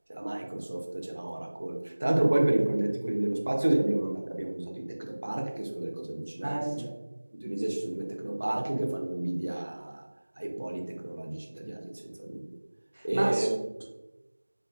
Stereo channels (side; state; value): both; inverted; correlation -1.00